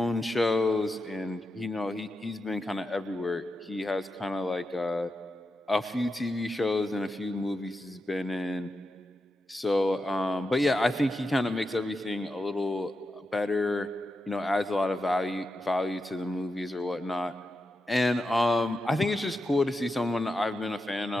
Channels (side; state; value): both; normal; correlation 0.88